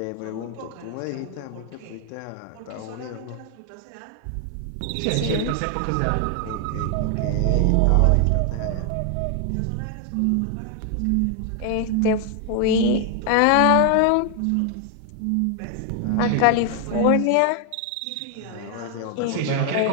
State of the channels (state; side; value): different; both; correlation 0.00